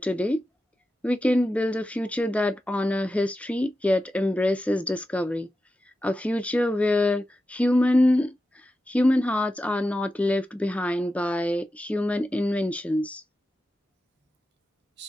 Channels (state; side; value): normal; both; correlation 0.91